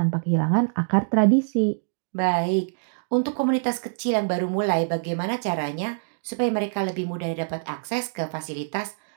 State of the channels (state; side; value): silent; left; digital silence